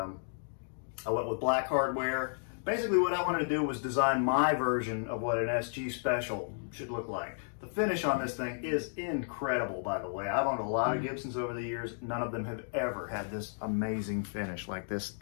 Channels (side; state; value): right; silent; digital silence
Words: went with black hardware. Basically what I wanted to do was design my version of what an SG Special should look like. The finish on this thing is incredible, by the way. I've owned a lot of Gibsons over the years. None of them have ever had this amazing finish like this